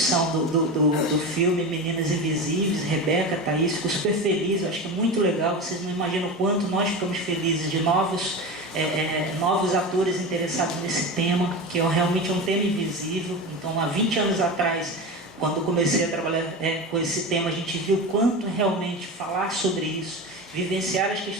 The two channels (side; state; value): both; normal; correlation 0.25